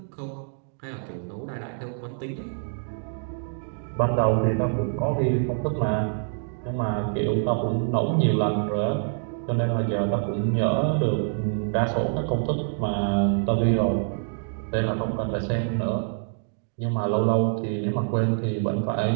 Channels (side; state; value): left; silent; digital silence